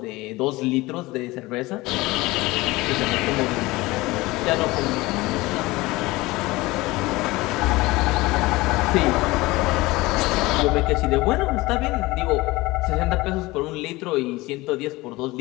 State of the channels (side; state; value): right; quieter; 20.7 dB